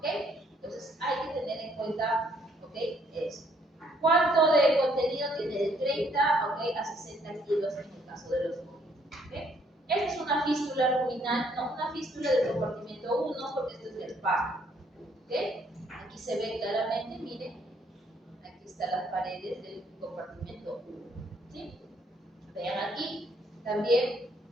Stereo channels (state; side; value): normal; both; correlation 0.67